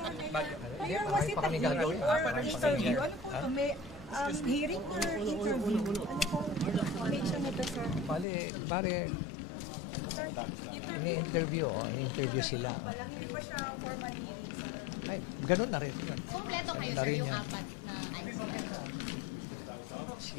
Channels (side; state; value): right; drops out; at 8.2 s